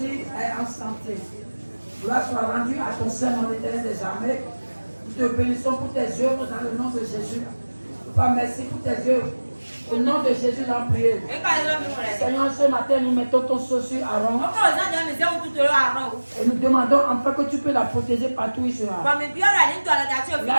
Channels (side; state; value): both; inverted; correlation -1.00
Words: est en santé. Gloire soit rendue à ton Saint nom éternel des armées. Nous te bénissons pour tes œuvres dans le nom de Jésus. Papa, merci pour tes œuvres. Au nom de Jésus, nous prions. Seigneur, ce matin, nous mettons ton sceau sur Aaron. Et nous demandons enfin que tu peux la protéger partout où il sera.